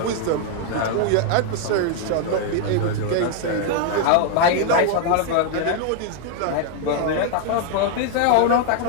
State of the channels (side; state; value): both; different; correlation 0.00